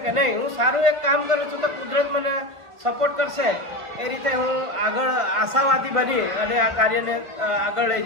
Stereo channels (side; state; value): left; late; 1.4 ms